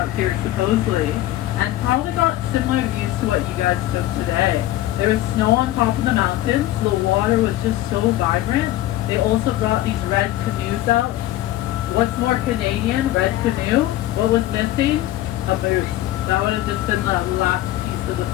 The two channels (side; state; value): right; quieter; 14.8 dB